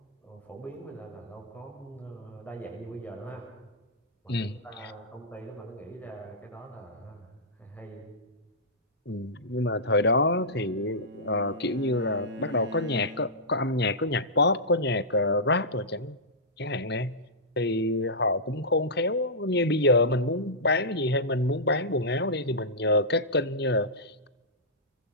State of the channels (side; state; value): both; normal; correlation -0.13